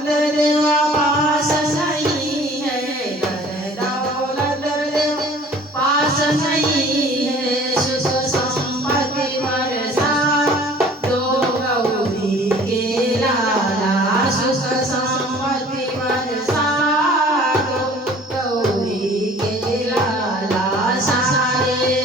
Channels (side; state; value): both; normal; correlation 0.50